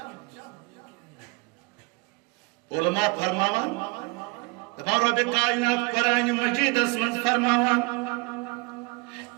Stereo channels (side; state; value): left; quieter; 27.6 dB